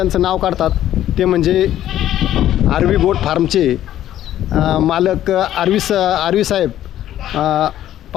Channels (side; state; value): right; quieter; 12.3 dB